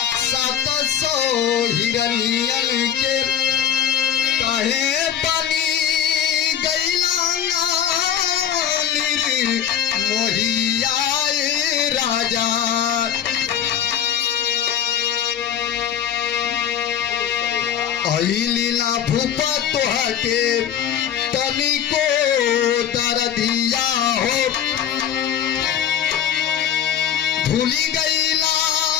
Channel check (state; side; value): quieter; right; 9.4 dB